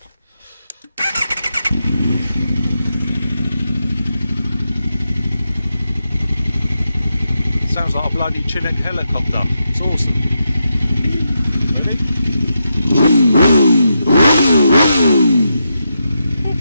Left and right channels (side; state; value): both; inverted; correlation -0.85